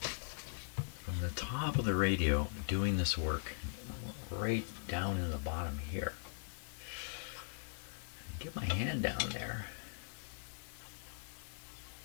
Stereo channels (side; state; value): right; silent; 51 dB below the other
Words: From the top of the radio, doing this work right down in the bottom here. Get my hand down there.